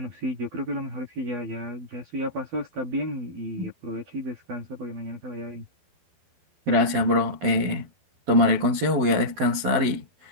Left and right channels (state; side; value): late; left; 12 ms